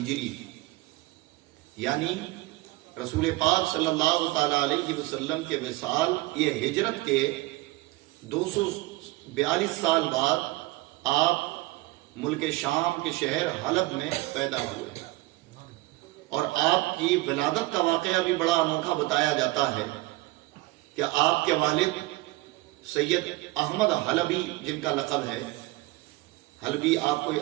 یعنی رسول پاک صلی اللہ تعالی علیہ وسلم کے وصال، یہ ہجرت کے 242 سال بعد آپ ملک شام کے شہر حلب میں پیدا ہوئے، اور آپ کی ولادت کا واقعہ بھی بڑا انوکھا بتایا جاتا ہے کہ آپ کے والد سید احمد حلبی، جن کا لقب ہے حلبی،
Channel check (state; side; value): quieter; left; 20.4 dB